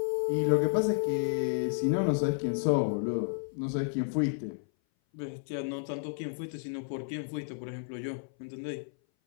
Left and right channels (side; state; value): right; silent; 57 dB below the other